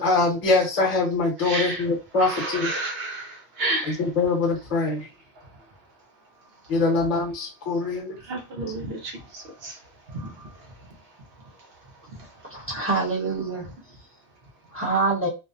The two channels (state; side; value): normal; both; correlation 0.19